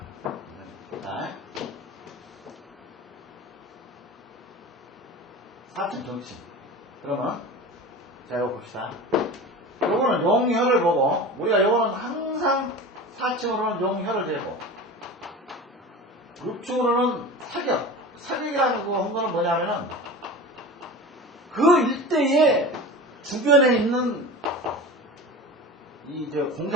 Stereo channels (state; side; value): normal; both; correlation 0.33